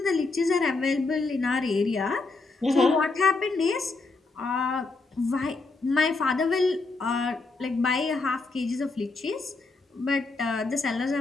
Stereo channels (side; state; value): right; quieter; 3.6 dB